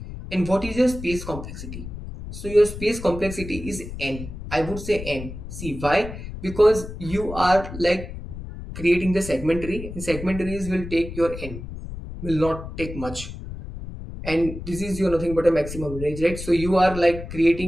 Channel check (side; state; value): left; noise; rumble, 10 dB below the sound